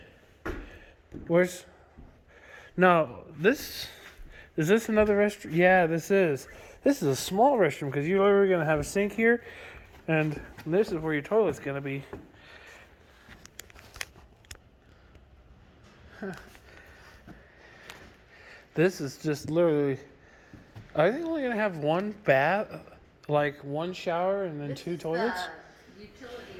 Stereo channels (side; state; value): both; identical; correlation 1.00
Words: room. Where's... No, this... Is this another restroom? Yeah, this is. This is a small restroom because you're literally going to have a sink here. And this is where your toilet's going to be. Huh. This is just literally... Are they only going to have 1 bath? Like 1 shower and then This 2 is toilets? the utility